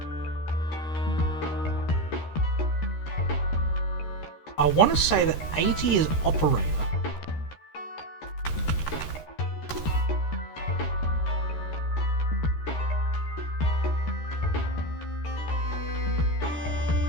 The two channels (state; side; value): late; right; 13 ms